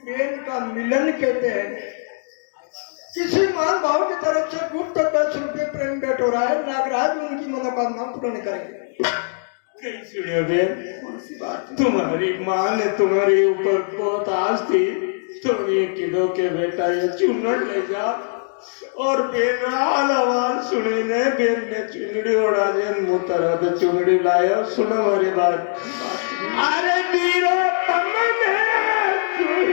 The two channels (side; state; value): right; silent; digital silence